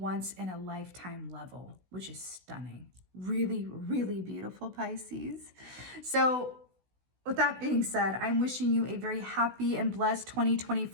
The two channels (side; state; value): left; late; 16 ms